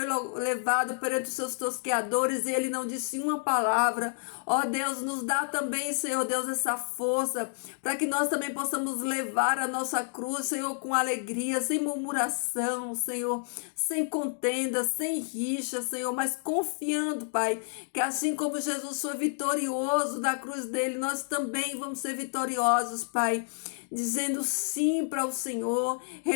levado perante os seus tosqueadores e ele não disse uma palavra. Ó Deus, nos dá também, Senhor Deus, essa força para que nós também possamos levar a nossa cruz, Senhor, com alegria, sem murmuração, Senhor, sem contenda, sem rixa, Senhor, mas confiando, Pai, que assim como Jesus foi vitorioso da cruz dele, nós também vamos ser vitoriosos, Pai, dizendo sim para o Senhor,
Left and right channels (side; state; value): right; silent; 58 dB below the other